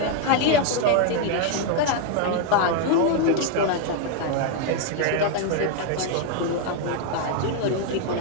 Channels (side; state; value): both; different; correlation 0.01